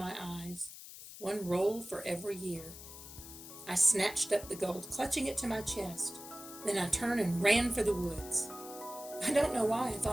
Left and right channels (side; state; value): left; noise; hiss, 14 dB below the sound